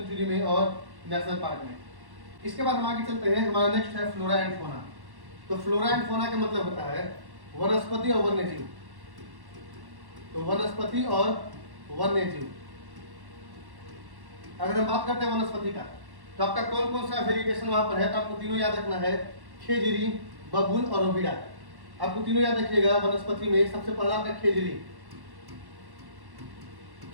में और नेशनल पार्क में। इसके बाद हम आगे चलते हैं, हमारा नेक्स्ट है फ्लोरा एंड फोना। तो फ्लोरा एंड फोना का मतलब होता है वनस्पति और वन्यजीव। तो वनस्पति और वन्यजीव, अगर हम बात करते हैं वनस्पति का, तो आपका कौन कौन सा वेरिएशन वहां पर है, तो आपको तीनों याद रखना है, खेजड़ी, बबूल और रोविड़ा। आपको तीनों याद रखिएगा। वनस्पति में सबसे पहला आपका खेजड़ी,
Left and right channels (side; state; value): left; late; 1.1 ms